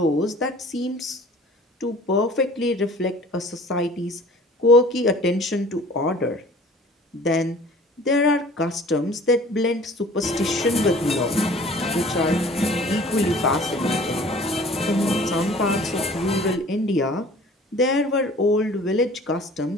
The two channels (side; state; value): both; normal; correlation 0.48